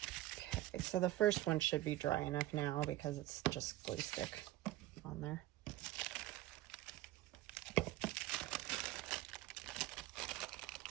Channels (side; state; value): left; quieter; 15.8 dB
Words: Okay, so the first one should be dry enough now because it's just glue stick on there.